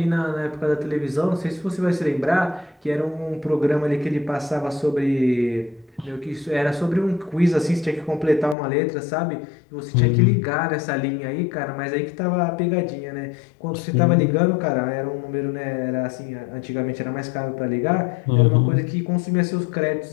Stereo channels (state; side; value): drops out; right; at 8.6 s